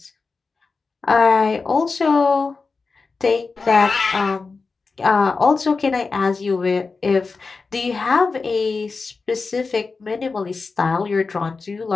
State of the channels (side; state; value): right; quieter; 4.3 dB